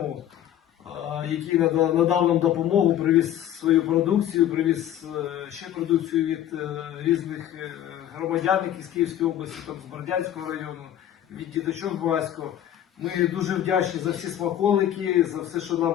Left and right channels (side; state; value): right; quieter; 11.4 dB